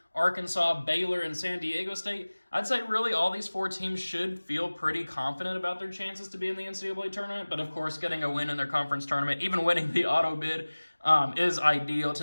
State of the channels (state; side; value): inverted; both; correlation -1.00